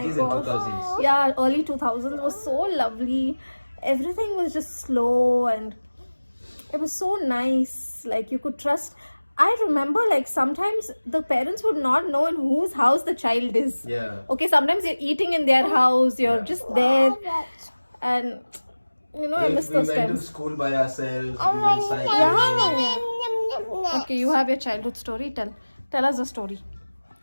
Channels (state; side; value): inverted; both; correlation -1.00